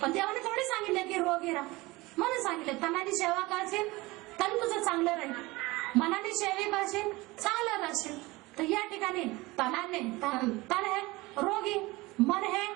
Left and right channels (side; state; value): left; quieter; 21.6 dB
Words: देवाने थोडी सांगितलं की रोगी राहा, म्हणून सांगितलं तनाची सेवा करशील तर तुझं चांगलं राहील, मनाने सेवा करशील चांगलं राहशील. तर या ठिकाणी तनाने, तन है रोगी, मन है